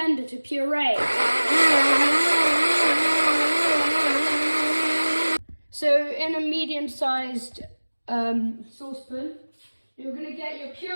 to puree. So in a medium-sized saucepan, you're going to get your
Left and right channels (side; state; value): both; inverted; correlation -1.00